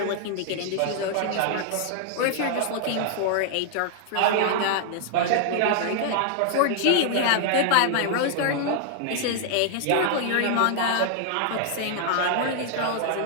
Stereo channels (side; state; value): both; different; correlation 0.00